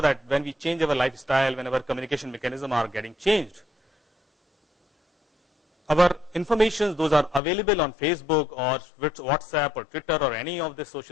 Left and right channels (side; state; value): right; drops out; at 7.4 s